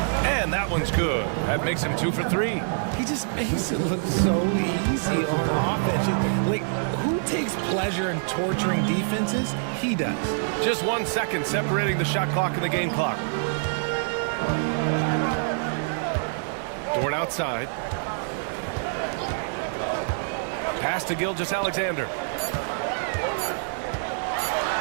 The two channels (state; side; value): silent; left; digital silence